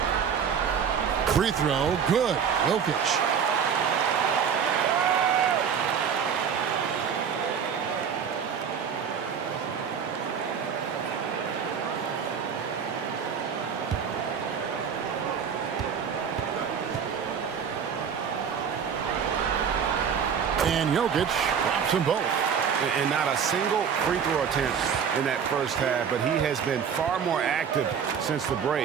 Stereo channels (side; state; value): left; quieter; 7.2 dB